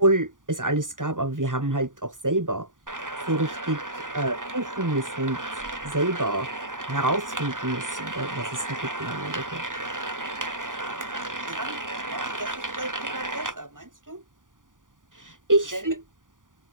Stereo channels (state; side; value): late; left; 0.88 ms